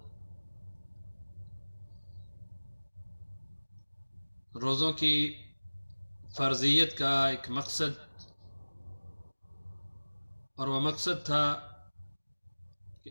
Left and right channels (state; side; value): inverted; both; correlation -1.00